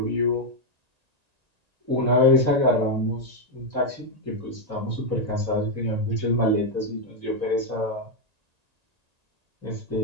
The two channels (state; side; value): late; left; 1.9 ms